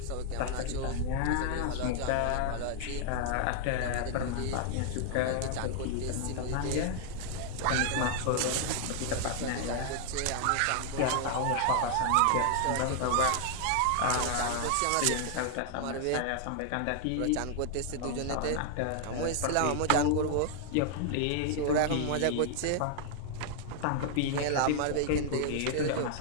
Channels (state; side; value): different; both; correlation 0.00